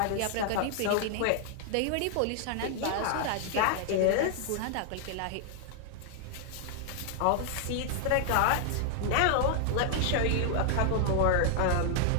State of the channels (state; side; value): different; both; correlation 0.00